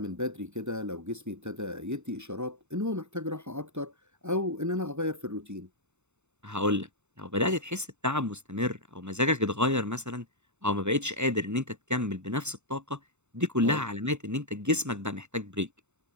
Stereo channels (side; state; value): left; late; 0.82 ms